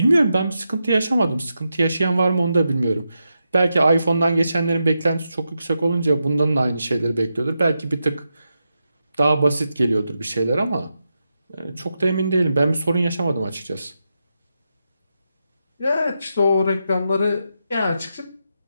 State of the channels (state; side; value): inverted; both; correlation -0.87